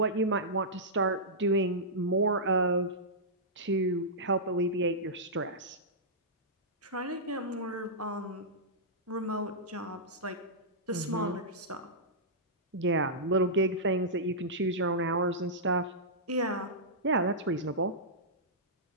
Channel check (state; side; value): normal; both; correlation -0.14